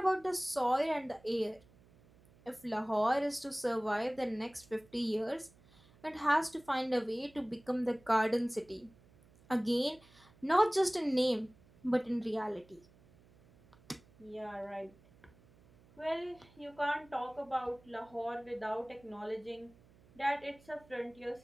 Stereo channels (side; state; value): right; noise; hum, 27 dB below the sound